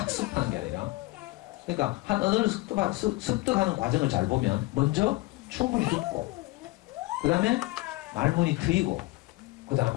게 아니라. 그러니까 한 언어를 습득하는 과정을 잘 보면 먼저 충분히 듣고 그 다음에 말문이 트이고 그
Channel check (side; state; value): right; quieter; 21.0 dB